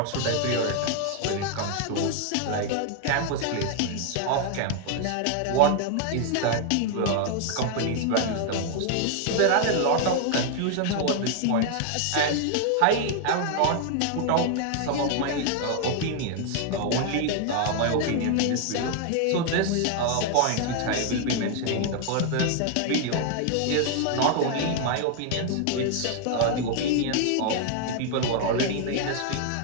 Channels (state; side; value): different; both; correlation 0.00